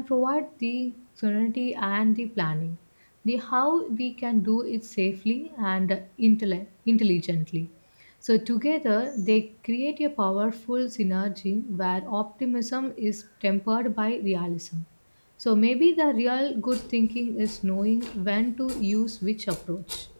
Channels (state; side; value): inverted; both; correlation -1.00